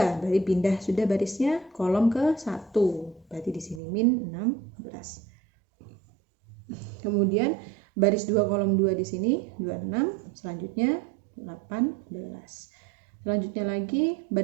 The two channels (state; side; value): drops out; left; at 3.8 s